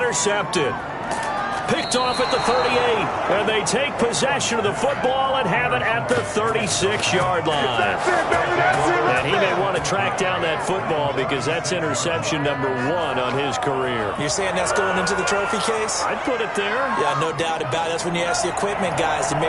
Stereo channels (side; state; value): both; identical; correlation 1.00